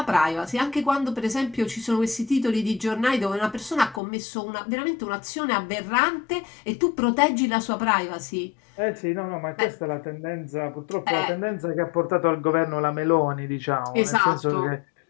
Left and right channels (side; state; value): right; drops out; at 4.0 s